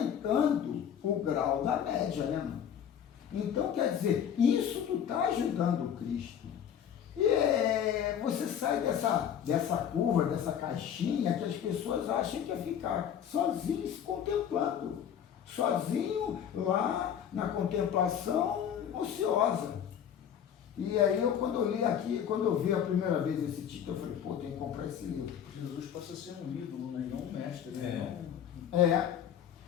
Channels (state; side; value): quieter; right; 8.9 dB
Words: o grau da média, né, mano? Então, quer dizer, isso tu está ajudando o Cristo. E você sai dessa curva, dessa caixinha que as pessoas acham que é ficar sozinho se contemplando. Sozinho lá na contemplação ociosa. E aí quando eu li aqui, quando eu vi a primeira vez esse título, eu falei, pô, tem que comprar esse livro. Jesus passa a ser um ídolo, né? E não um mestre, né?